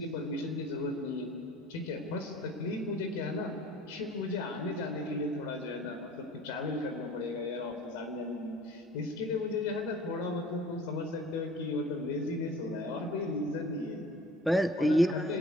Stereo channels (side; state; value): both; normal; correlation 0.47